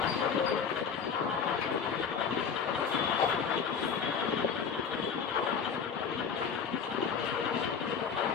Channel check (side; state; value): right; quieter; 6.5 dB